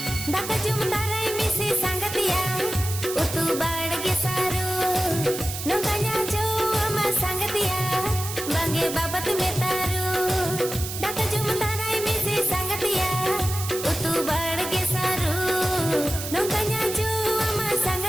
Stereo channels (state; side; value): noise; right; hiss, 7 dB below the sound